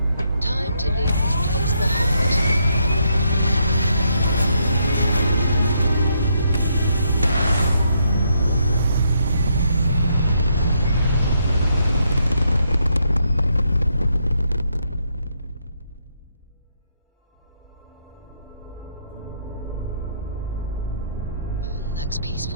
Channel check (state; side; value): inverted; both; correlation -0.76